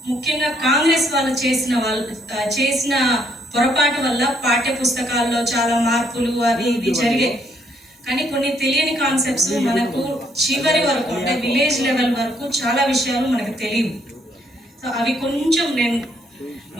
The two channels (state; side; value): normal; both; correlation 0.70